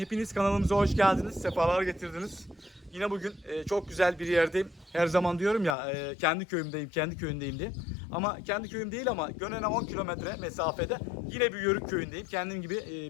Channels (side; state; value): right; drops out; at 5.8 s